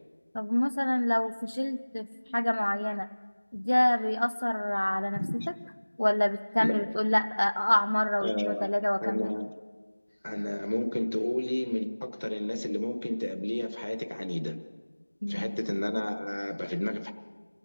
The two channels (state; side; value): inverted; both; correlation -1.00